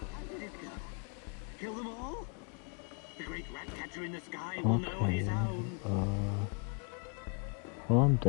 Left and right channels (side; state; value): right; quieter; 37.1 dB